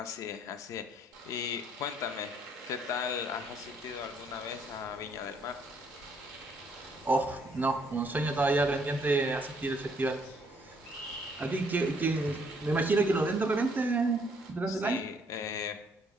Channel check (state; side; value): normal; both; correlation 0.67